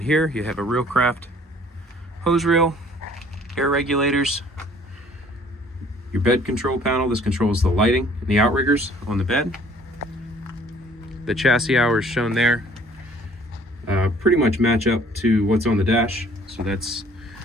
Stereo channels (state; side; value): normal; both; correlation 0.56